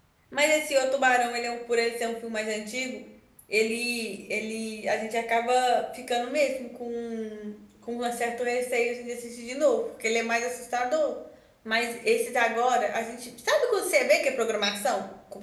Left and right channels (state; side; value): identical; both; correlation 1.00